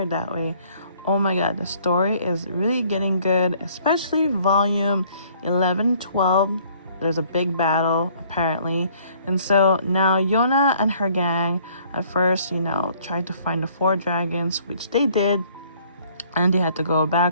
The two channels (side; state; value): both; inverted; correlation -0.60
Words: it that way. Oh my god, the story is really getting good, especially volume 11, 12. There's a big battle apparently, and so now Yona and her gang at first, tried to find the four dragons, which they did, and they had to go